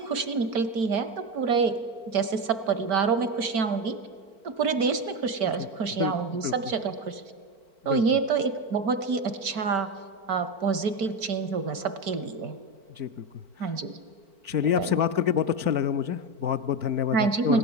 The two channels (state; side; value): late; left; 4.4 ms